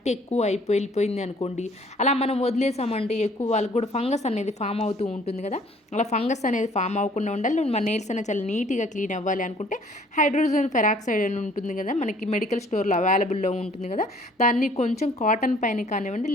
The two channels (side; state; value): both; normal; correlation 0.57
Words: ఎక్కువ వెళ్ళిపోయింది అనుకోండి, అలా మనం వదిలేసామంటే ఎక్కువ వాళ్ళకి కూడా ఫంగస్ అనేది ఫామ్ అవుతూ ఉంటుంది కదా. అలా ఫంగస్ అనేది ఫామ్ అవ్వకుండా ఉండాలి, మన నెయిల్స్ అనేది చాలా నీట్గా క్లీన్ అవ్వాలి అనుకుంటే హైడ్రోజన్ పెరాక్సైడ్ అని ఉంటుంది కదా, మనకి మెడికల్ స్టోర్లో అవైలబుల్లో ఉంటుంది కదా, దాన్ని కొంచెం కాటన్ పైన కానివ్వండి